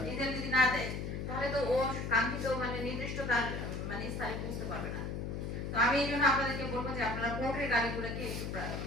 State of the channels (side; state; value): left; noise; hum, 4 dB below the sound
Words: ডিজেল যদি না দেয় তাহলে তো ও কাঙ্ক্ষিত মানে নির্দিষ্ট তার মানে স্থানে পৌঁছতে পারবে না। তো আমি এই জন্য আপনাদেরকে বলবো যে আপনারা পোর্টের গাড়িগুলোকে একটু